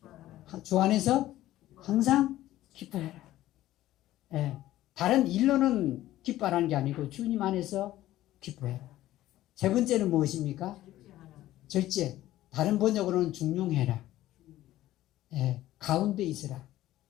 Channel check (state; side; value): quieter; right; 14.7 dB